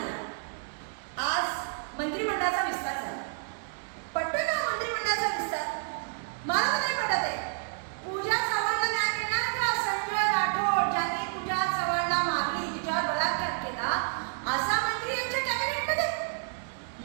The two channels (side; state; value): left; silent; digital silence